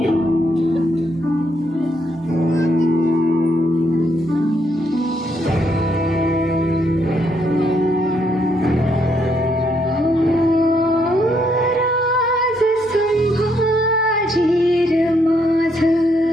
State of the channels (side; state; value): both; normal; correlation 0.74